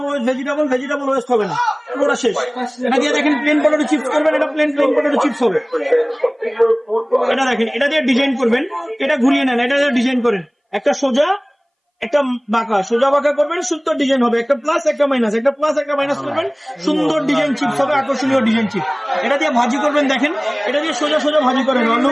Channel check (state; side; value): identical; both; correlation 1.00